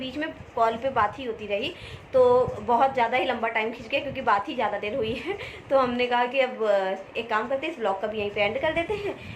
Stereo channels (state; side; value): identical; both; correlation 1.00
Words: में कॉल पे बात ही होती रही, तो बहुत ज़्यादा ही लंबा टाइम खिंच गया क्योंकि बात ही ज़्यादा देर हुई है। तो हमने कहा कि अब एक काम करते हैं, इस ब्लॉग का भी यहीं पे एंड कर देते हैं।